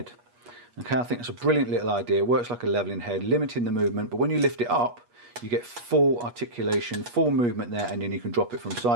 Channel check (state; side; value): late; left; 8.3 ms